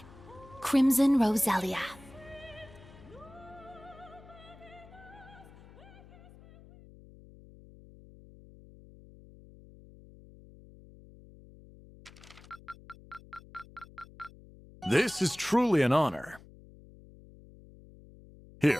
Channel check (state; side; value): noise; left; hum, 21 dB below the sound